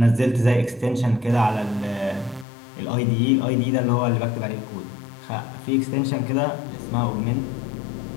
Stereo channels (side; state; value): right; drops out; at 2.5 s